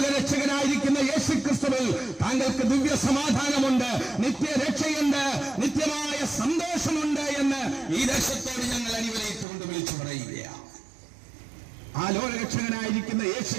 യേശുക്രിസ്തുവിൽ താങ്കൾക്ക് ദിവ്യ സമാധാനമുണ്ട്, നിത്യരക്ഷയുണ്ട്, നിത്യമായ സന്തോഷമുണ്ട് എന്ന് ഈ ദേശത്തോട് ഞങ്ങൾ അടിവരയിട്ടുകൊണ്ട് വിളിച്ചു പറയുകയാണ്. ആ ലോകരക്ഷകനായിരിക്കുന്ന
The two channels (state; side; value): drops out; left; at 9.5 s